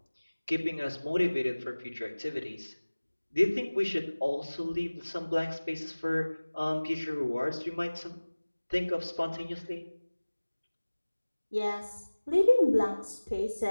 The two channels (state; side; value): inverted; both; correlation -1.00